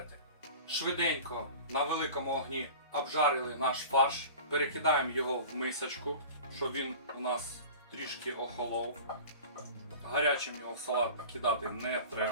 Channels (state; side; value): inverted; both; correlation -0.38